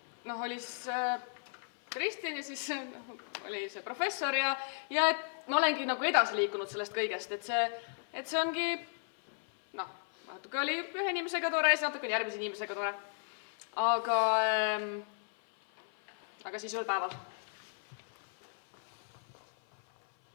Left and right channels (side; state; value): right; silent; 55 dB below the other